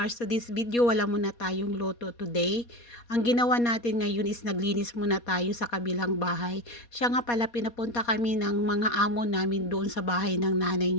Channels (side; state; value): right; late; 4.2 ms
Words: to this video wala muna tayong loto today. Ang ginawa natin ngayon is naglinis muna tayo sa kabilang bahay. Siya nga pala pinapunta kami ng mga amo namin doon sa bahay ng nanay